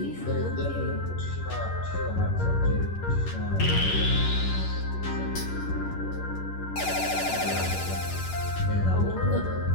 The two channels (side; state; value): right; late; 11 ms